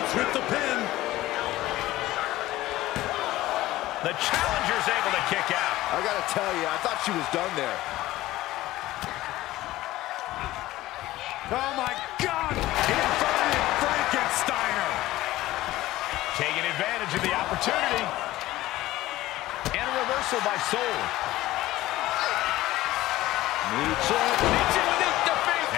with the pin. The challenger's able to kick out. I gotta tell you, I thought she was done there. Oh my God! Inverted Frankensteiner! Taking advantage of the opportunity. And a reversal by Soul. Michin with it, defeat.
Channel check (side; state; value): right; quieter; 16.5 dB